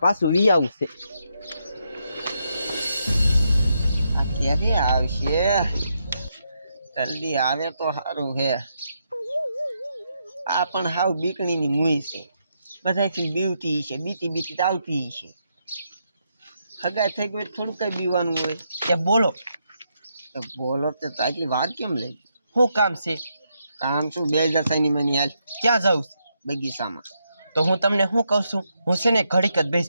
પાછું વી આવું છે. આ ક્યારે આવશે? જલ્દી આવે તો સારું હે. આ પણ હાવ બીકણીની મુઈ છે. બધાથી બીવતી છે, બીતી બીતી આવતી છે. હગાઈ થઈ ગઈ થોડું કઈ બીવાનું હોય. એ બોલો બોલો તો આટલી વાત કેમ લઈ? શું કામ છે? કામ શું 2000 માની હાલ ક્યાં જાઉં છે? બગીચામાં. તો હું તમને શું કહું છું, હું છે ને ઘડીક જ બેસ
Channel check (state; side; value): inverted; both; correlation -0.80